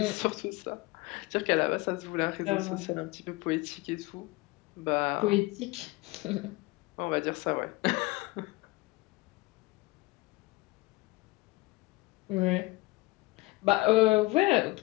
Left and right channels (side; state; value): right; quieter; 21.7 dB